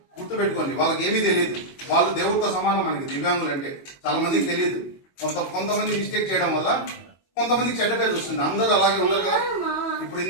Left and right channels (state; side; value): late; right; 22 ms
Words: గుర్తుపెట్టుకోండి, వాళ్ళకి ఏమీ తెలియదు. వాళ్ళు దేవుడితో సమానం. మనకి దివ్యాంగులు అంటే చాలా మందికి తెలియదు. కొంతమంది మిస్టేక్ చేయడం వల్ల కొంతమందికి చెడ్డ పేరు వస్తుంది. అందరూ అలాగే ఉండరు కదా. ఇప్పుడు